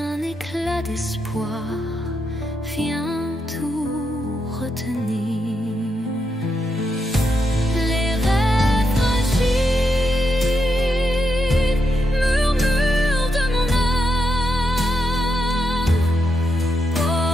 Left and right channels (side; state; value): both; normal; correlation 0.83